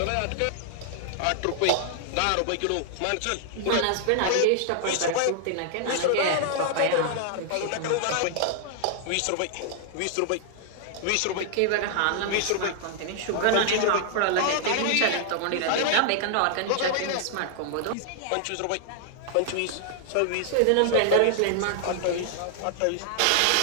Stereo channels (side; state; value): both; different; correlation 0.00